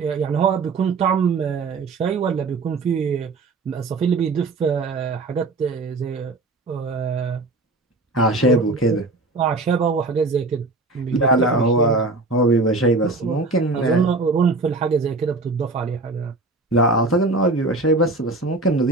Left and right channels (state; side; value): quieter; left; 3.4 dB